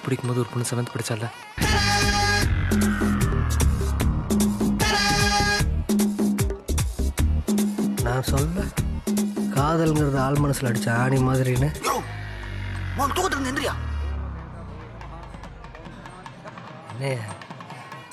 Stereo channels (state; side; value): identical; both; correlation 1.00